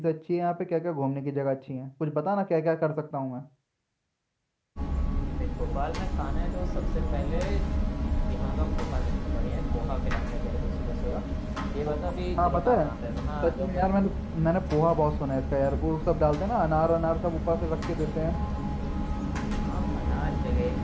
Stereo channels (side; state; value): both; identical; correlation 1.00